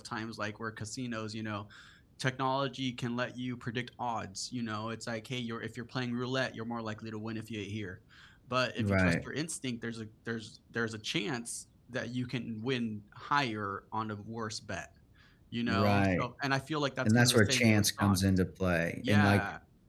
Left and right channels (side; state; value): both; identical; correlation 1.00